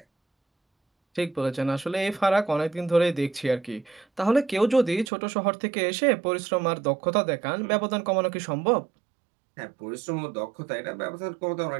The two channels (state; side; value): drops out; left; at 5.1 s